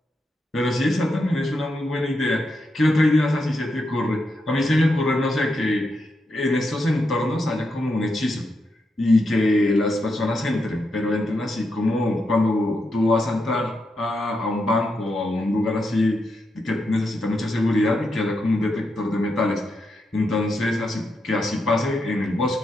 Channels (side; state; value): both; normal; correlation 0.84